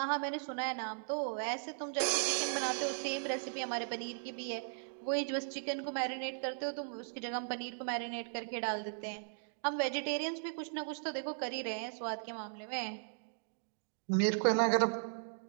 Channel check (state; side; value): silent; left; digital silence